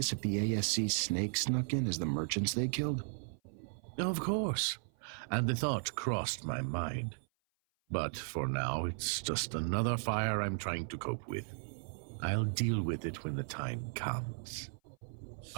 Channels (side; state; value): left; silent; 54 dB below the other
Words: if the ASC snake snuck in as the merchants they killed? Of course, and the thought crossed my mind. But for now, it's just another fire I'm trying to cope with. I'll deal with it when the time comes.